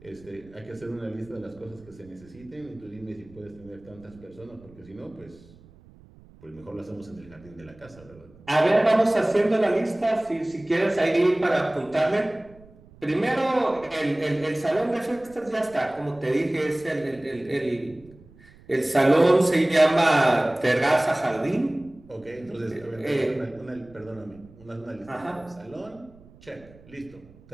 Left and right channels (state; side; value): noise; right; rumble, 24 dB below the sound